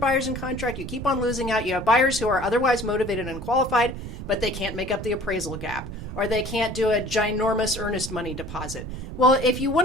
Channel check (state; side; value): noise; right; rumble, 9 dB below the sound